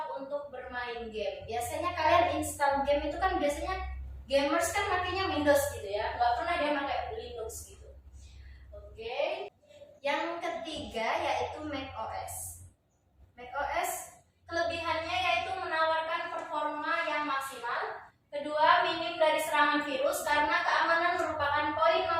untuk bermain game. Biasanya kalian install game itu kan biasanya gamers kan makanya Windows gitu ya, nggak pernah dia pakai Linux gitu. Oke. Yang ketiga yaitu macOS. macOS kelebihannya yaitu menawarkan performa yang maksimal. Kedua, minim dari serangan virus karena keamanan merupakan poin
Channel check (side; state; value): both; identical; correlation 1.00